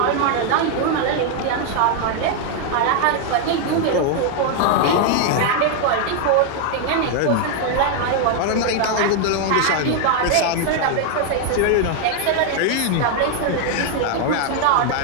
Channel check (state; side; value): different; both; correlation 0.00